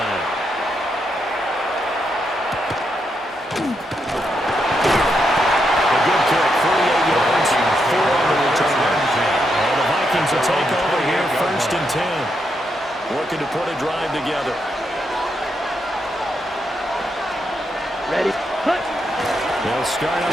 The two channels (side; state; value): both; normal; correlation 0.81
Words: A good kick, 48 yards, 4 on the return. And the Vikings will take over here, 1st and 10. Working to put a drive together. Ready. Hut. They'll start